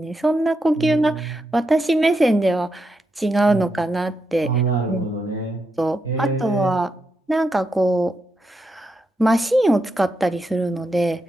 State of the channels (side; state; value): both; normal; correlation 0.84